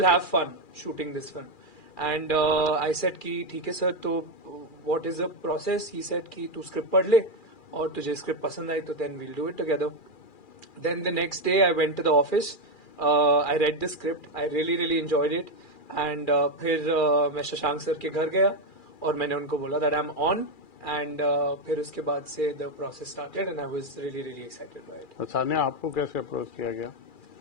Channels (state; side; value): late; right; 2.4 ms